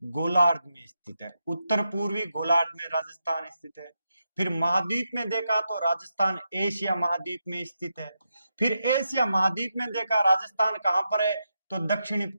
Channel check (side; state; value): both; inverted; correlation -0.86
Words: गोलार्ध में स्थित है, उत्तर पूर्वी गोलार्ध में राजस्थान स्थित है। फिर महाद्वीप में देखा तो राजस्थान एशिया महाद्वीप में स्थित है। फिर एशिया महाद्वीप में देखा राजस्थान कहां पर है, तो दक्षिणी